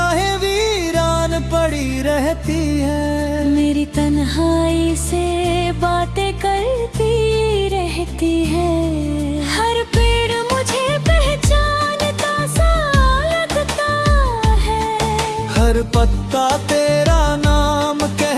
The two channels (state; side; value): identical; both; correlation 1.00